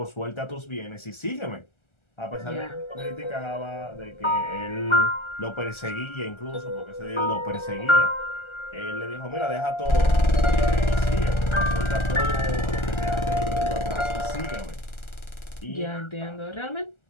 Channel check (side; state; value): right; late; 1.4 ms